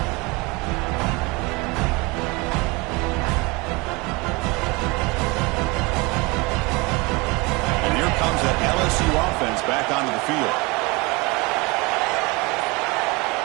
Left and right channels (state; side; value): quieter; left; 25.9 dB